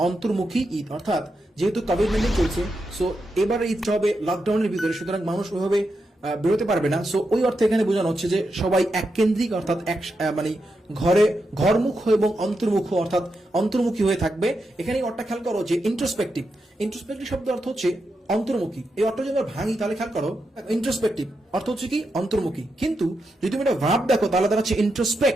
অন্তর্মুখী ঈদ। অর্থাৎ যেহেতু কোভিড-19 চলছে, সো এবারে ঈদটা হবে লকডাউনের ভিতরে, সুতরাং মানুষ ওইভাবে বেরোতে পারবে না। সো ওই অর্থে এখানে বোঝানো হচ্ছে যে সবাই এককেন্দ্রিক অর্থাৎ মানে ঘরমুখ এবং অন্তর্মুখ অর্থাৎ অন্তর্মুখী হয়ে থাকবে। এখানে অর্থটা খেয়াল করো যে ইন্ট্রোস্পেক্টিভ শব্দ অর্থ হচ্ছে অন্তর্মুখী। এই অর্থ যদি আমরা ভাঙি তাহলে খেয়াল করো ইন্ট্রোস্পেক্টিভ অর্থ হচ্ছে কি অন্তর্মুখী, কিন্তু যদি তুমি এটা ভার্ব দেখো তাহলে তারা হচ্ছে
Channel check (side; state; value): both; normal; correlation 0.86